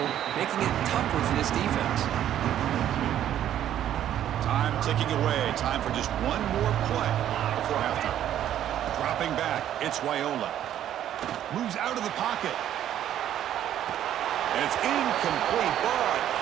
making it tougher for this defense. Time ticking away. Time for just one more play before halftime. Dropping back, it's Raiola. Moves out of the pocket. And it's incomplete, but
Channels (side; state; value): left; quieter; 11.2 dB